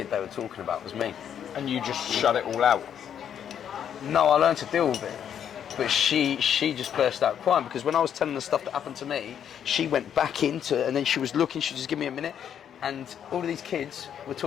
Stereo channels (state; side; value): quieter; right; 9.0 dB